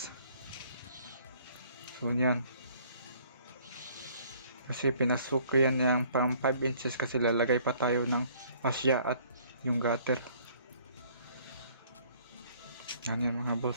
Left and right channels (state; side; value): inverted; both; correlation -0.59